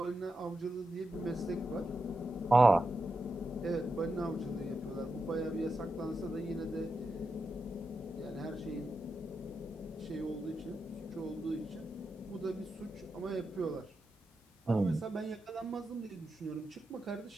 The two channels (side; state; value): both; normal; correlation 0.88